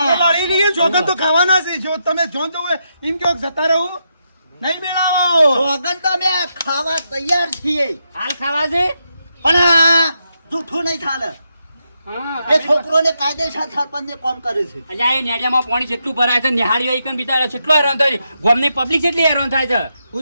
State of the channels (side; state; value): both; inverted; correlation -0.83